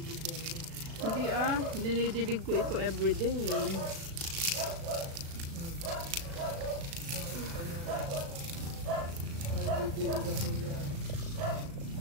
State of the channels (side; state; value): left; late; 36 ms